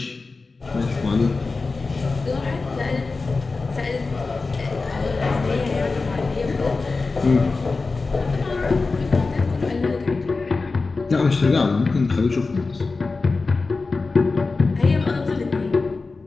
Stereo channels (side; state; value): right; quieter; 3.9 dB